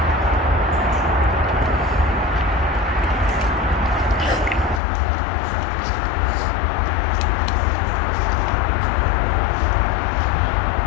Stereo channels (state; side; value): drops out; right; at 4.8 s